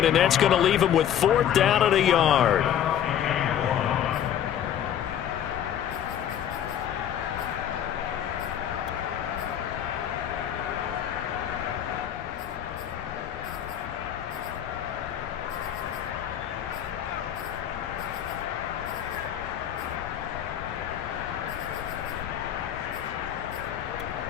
and that's going to leave him with 4th down at a yard.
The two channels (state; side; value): quieter; right; 10.1 dB